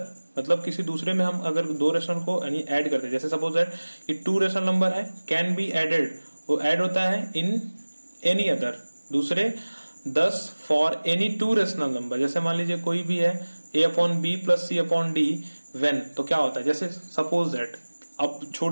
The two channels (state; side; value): inverted; both; correlation -1.00